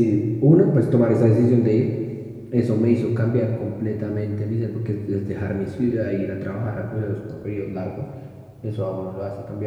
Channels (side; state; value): both; identical; correlation 1.00